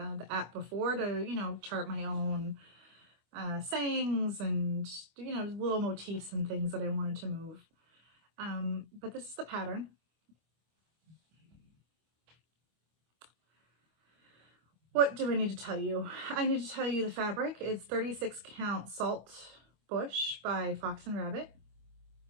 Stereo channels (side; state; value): left; late; 25 ms